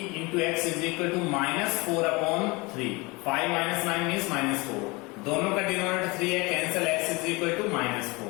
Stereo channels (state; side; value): quieter; right; 25.5 dB